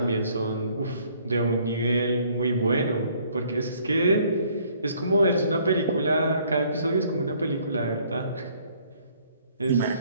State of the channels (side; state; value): both; inverted; correlation -0.62